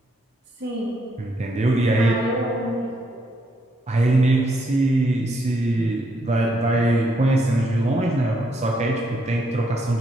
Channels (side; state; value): both; normal; correlation 0.75